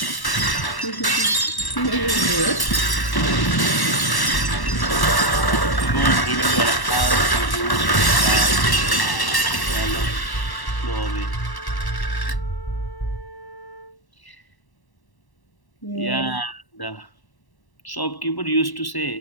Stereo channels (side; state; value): right; late; 1.1 ms